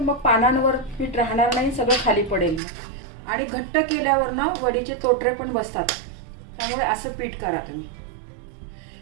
पानांवर पीठ राहणार नाही, सगळं खाली पडेल. आणि घट्ट केल्यावर ना वडीचे तोटरे पण बसतात, त्यामुळे असं पीठ करा तुम्ही.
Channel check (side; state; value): left; drops out; at 2.6 s